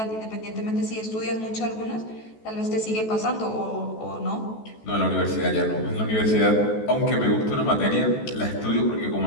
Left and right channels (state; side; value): late; right; 14 ms